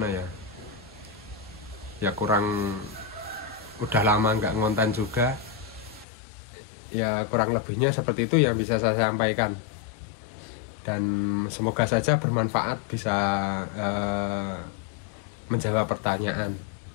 ya kurang, udah lama nggak ngonten juga ya, kurang lebihnya seperti itu yang bisa saya sampaikan, dan semoga saja bermanfaat, bisa menjawab pertanyaan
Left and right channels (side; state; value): right; drops out; at 6.1 s